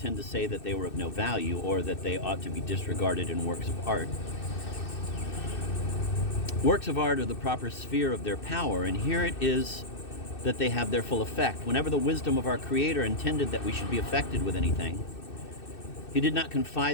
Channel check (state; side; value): late; right; 2.6 ms